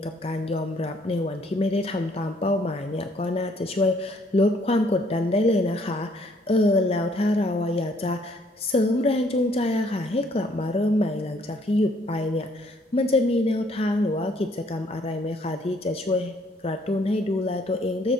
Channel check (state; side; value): normal; both; correlation 0.64